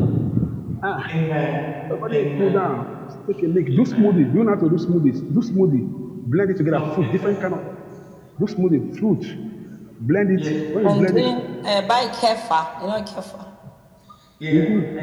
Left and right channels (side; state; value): both; identical; correlation 1.00